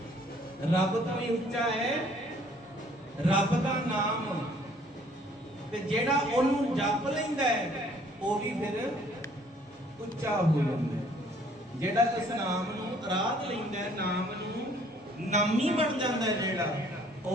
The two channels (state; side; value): normal; both; correlation 0.59